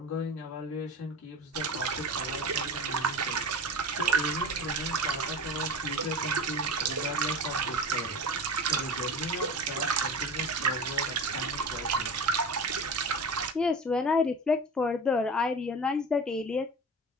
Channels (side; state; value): both; normal; correlation 0.31